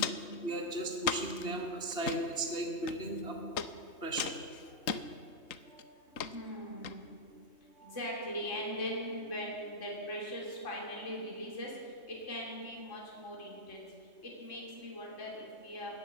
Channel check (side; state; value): right; late; 3.2 ms